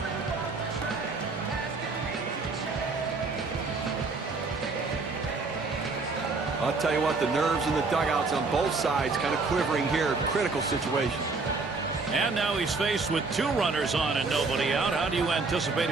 I'll tell you what, the nerves in the dugouts on both sides kind of quivering here. Critical situation. And now he's faced with 2 runners on and nobody out. How do you anticipate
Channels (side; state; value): left; quieter; 4.0 dB